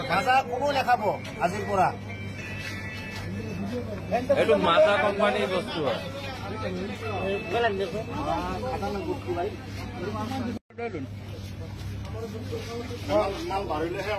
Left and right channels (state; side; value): identical; both; correlation 1.00